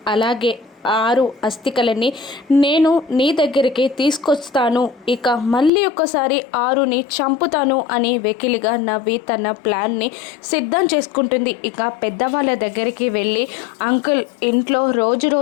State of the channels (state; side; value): drops out; right; at 5.7 s